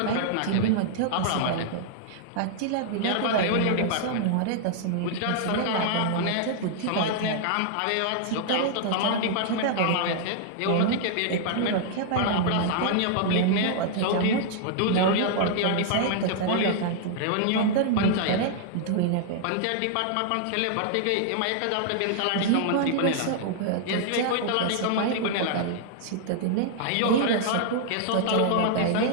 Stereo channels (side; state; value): both; different; correlation -0.01